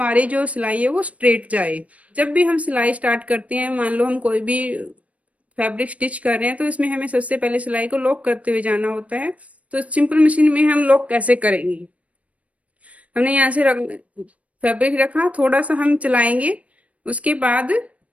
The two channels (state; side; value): late; left; 0.066 ms